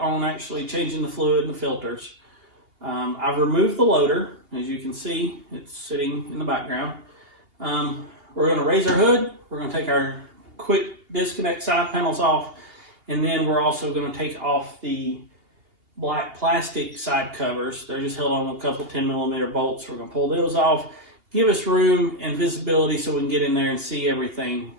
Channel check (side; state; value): left; late; 2.8 ms